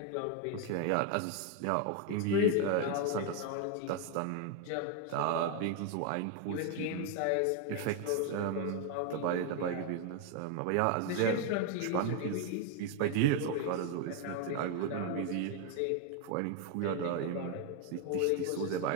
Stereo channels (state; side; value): different; both; correlation 0.01